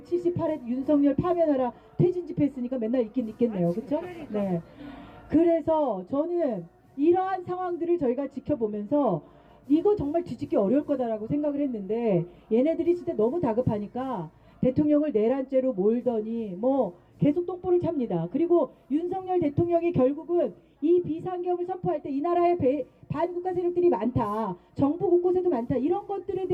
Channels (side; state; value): both; identical; correlation 1.00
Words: 윤석열 파면하라 퇴진 집회 했으니까 맨날 있겠네요. 그쵸? 네. 그래서 저는 이러한 상황들을 저희가 지켜보면서 이거 정말 뒤집기 어려울 거다라고 생각을 했는데 얘네들이 진짜 너무 다급하니까 대통령을 내란죄로 몰더니 계속 똥볼을 찹니다. 그리고 윤석열 대통령이 결국은 이 비상계엄을 선포할 때 이 나라에 반국가 세력들이 많다. 정부 곳곳에도 많다. 이런 것들에